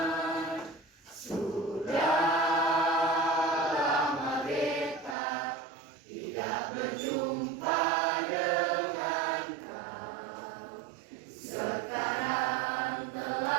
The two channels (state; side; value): drops out; left; at 5.2 s